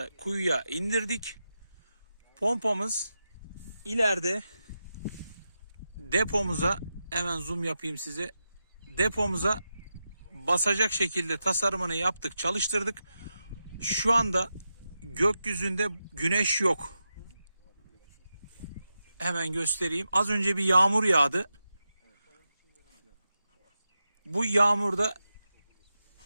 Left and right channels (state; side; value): inverted; both; correlation -0.89